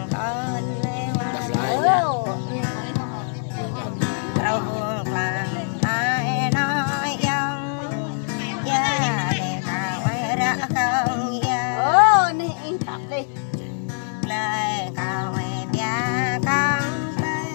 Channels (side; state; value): right; silent; 63 dB below the other